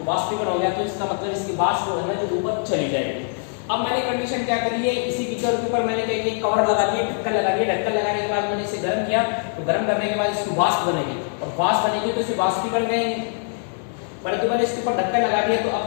वाष्पीकरण हो गया तो इसका मतलब इसकी वाष्प जो है ना जो ऊपर चली जाएगी। अब मैंने कंडीशन क्या करी है, इसी बीकर के ऊपर मैंने क्या किया, कवर लगा दिया, ढक्कन लगा दिया। ढक्कन लगाने के बाद मैंने इसे गर्म किया। तो गर्म करने के बाद इसकी वाष्प बनेगी और वाष्प बनेगी तो इसे वाष्पीकरण कहेंगे। परंतु मैंने इसके ऊपर ढक्कन लगा दिया तो अब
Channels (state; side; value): silent; right; 64 dB below the other